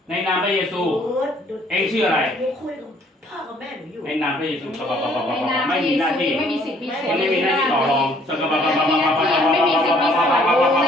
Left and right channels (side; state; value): both; normal; correlation 0.62